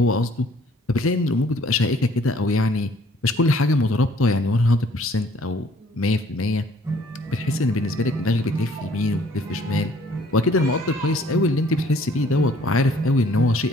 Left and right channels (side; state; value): both; normal; correlation 0.58